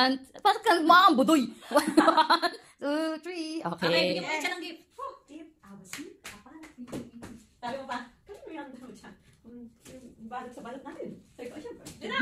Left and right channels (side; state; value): both; identical; correlation 1.00